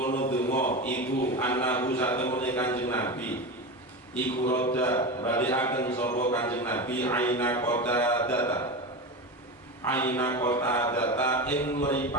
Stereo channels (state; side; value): normal; both; correlation 0.23